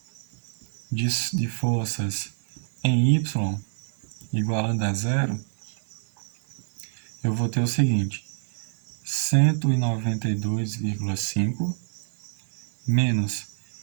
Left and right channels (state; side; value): silent; left; digital silence